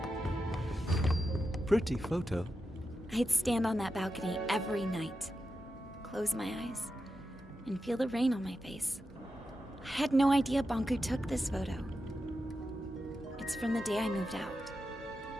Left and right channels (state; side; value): normal; both; correlation 0.89